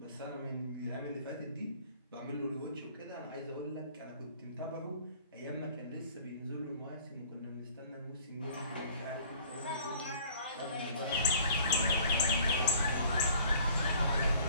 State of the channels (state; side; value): inverted; both; correlation -0.53